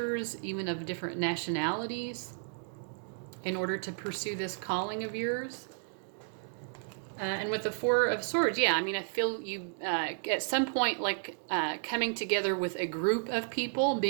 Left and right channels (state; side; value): silent; left; digital silence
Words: even of different nationalities, in order to pursue this calling of yours. And with the Four of Swords, I feel you at some point like coming together with a group of people,